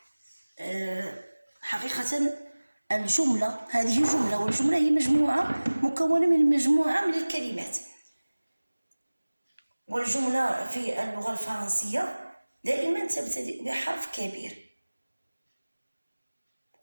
حقيقة الجملة هذه جملة والجملة هي مجموعة مكونة من مجموعة من الكلمات. والجملة في اللغة الفرنسية دائما تبتدئ بحرف كبير،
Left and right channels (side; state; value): both; inverted; correlation -1.00